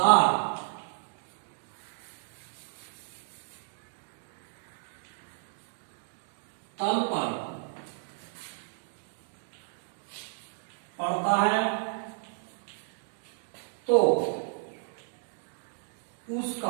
तल पर पड़ता है तो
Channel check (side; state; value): left; silent; digital silence